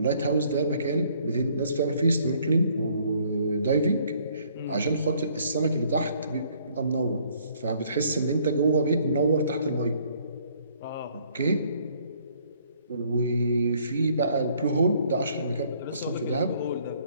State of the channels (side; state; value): both; inverted; correlation -0.63